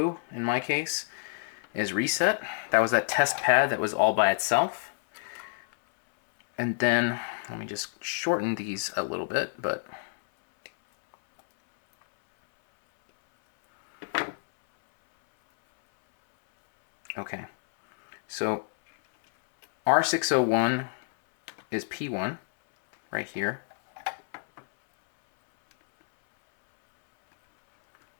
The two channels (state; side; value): silent; right; 59 dB below the other